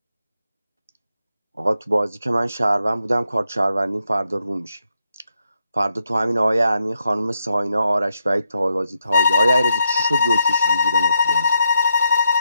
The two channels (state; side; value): inverted; both; correlation -0.81